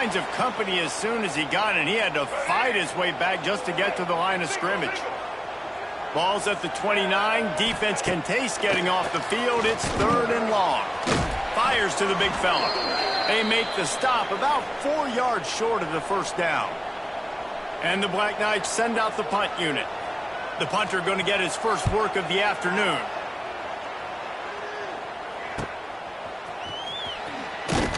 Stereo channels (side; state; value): both; identical; correlation 1.00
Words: of company as soon as he got it. He had to fight his way back just to get to the line of scrimmage. Ball's at the 29. Defense can taste getting off the field. It's 3rd and long. Fires to the big fella. They make the stop about 4 yards short of the first down. And the Black Knights send out the punt unit. The punter going to get his first work of the afternoon.